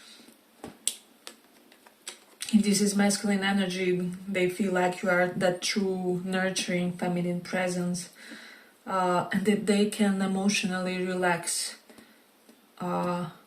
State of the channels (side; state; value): both; identical; correlation 1.00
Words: If this is masculine energy, they feel like you are that true nurturing feminine presence, and that they can emotionally relax